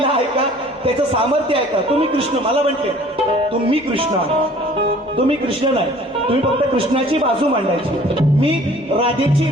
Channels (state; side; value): normal; both; correlation 0.52